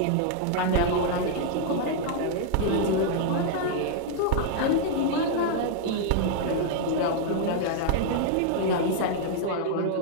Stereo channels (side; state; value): both; different; correlation -0.01